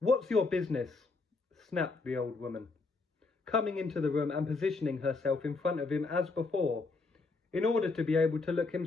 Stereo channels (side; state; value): right; quieter; 3.9 dB